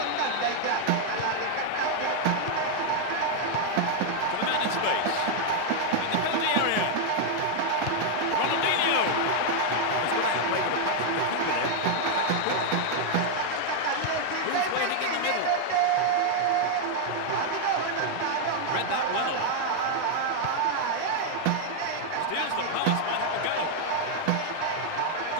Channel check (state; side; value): different; both; correlation 0.00